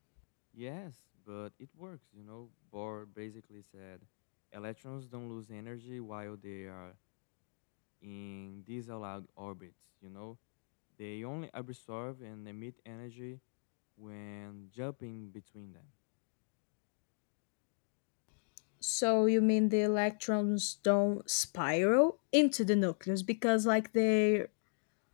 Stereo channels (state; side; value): silent; right; digital silence